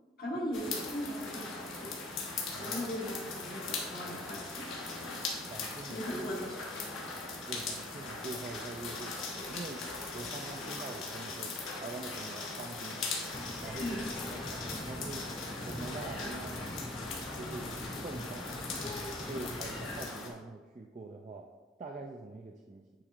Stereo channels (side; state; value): both; normal; correlation 0.49